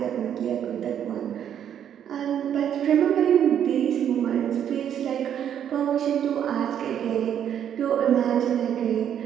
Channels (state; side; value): quieter; left; 9.4 dB